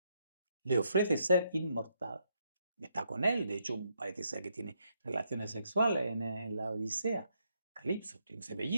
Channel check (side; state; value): both; inverted; correlation -0.76